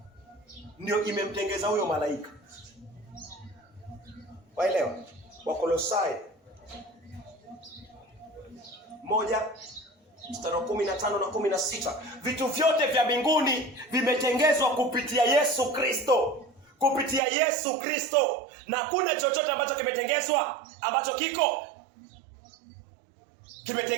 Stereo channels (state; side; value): drops out; left; at 17.2 s